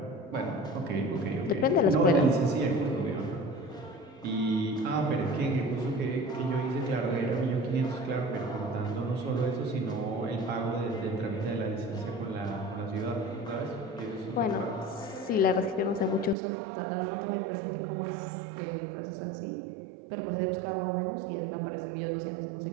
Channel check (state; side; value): drops out; left; at 16.4 s